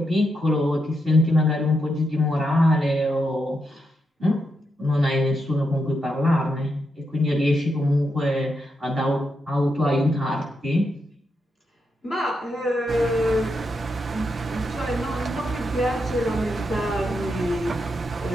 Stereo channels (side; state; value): both; normal; correlation 0.83